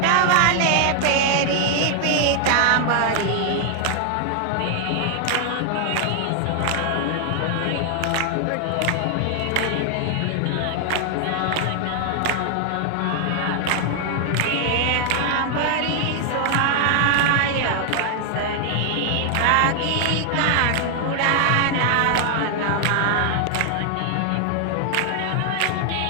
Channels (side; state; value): both; different; correlation 0.00